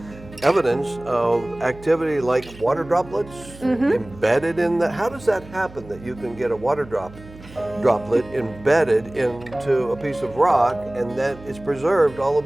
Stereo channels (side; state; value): right; noise; hum, 19 dB below the sound